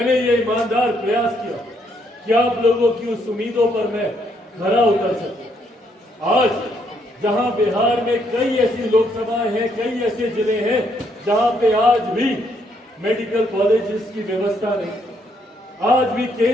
ये ईमानदार प्रयास किया कि आप लोगों की उस उम्मीदों पर मैं खरा उतर सकूं। आज जहां बिहार में कई ऐसी लोकसभाएं हैं, कई ऐसे जिले हैं जहां पे आज भी मेडिकल कॉलेजेस की व्यवस्था नहीं, आज भी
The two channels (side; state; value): both; normal; correlation 0.72